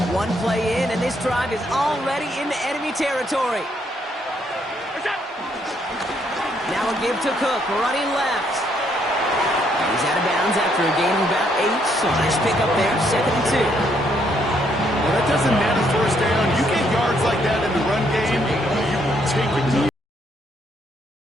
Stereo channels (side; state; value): both; normal; correlation 0.72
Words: One play in, and this drive is already into enemy territory. Now a give to Cook, running left. He's out of bounds after a gain of about 8, so nice pick up there, 2nd and 2. Well, that doesn't matter 1st down. You get yards like that in the run game, you will take it.